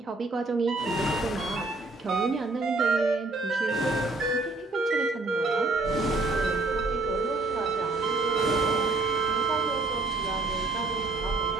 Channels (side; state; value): left; quieter; 3.3 dB